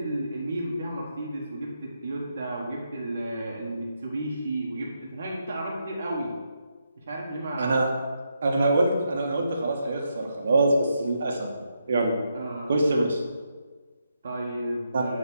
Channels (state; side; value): inverted; both; correlation -0.82